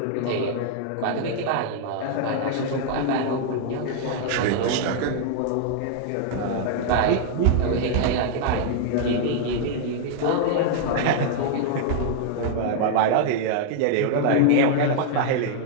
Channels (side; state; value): both; different; correlation -0.01